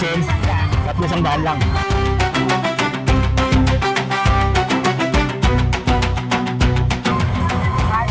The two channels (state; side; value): identical; both; correlation 1.00